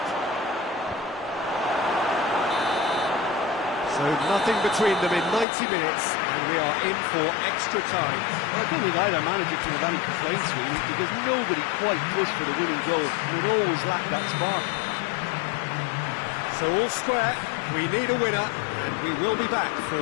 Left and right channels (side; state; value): right; drops out; at 5.5 s